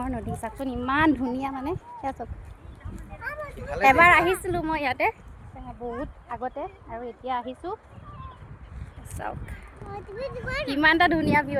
নদী। চাওকচোন ইমান ধুনীয়া, মানে সেয়া চাওক। এবাৰ আহিছিলোঁ মই ইয়াতে বহুত আগতে, আৰু এতিয়া আহিছোঁ। চাওক কিমান এটা ধুনীয়া ভিউ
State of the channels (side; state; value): both; identical; correlation 1.00